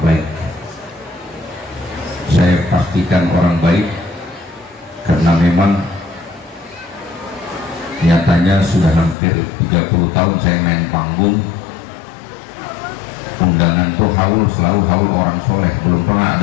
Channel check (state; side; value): drops out; right; at 9.2 s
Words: Saya pastikan orang baik, karena memang nyatanya sudah hampir 30 tahun saya main panggung, undangan tuh haul selalu haul orang soleh, belum pernah